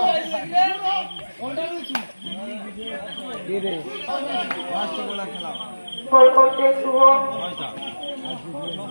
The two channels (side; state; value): both; inverted; correlation -1.00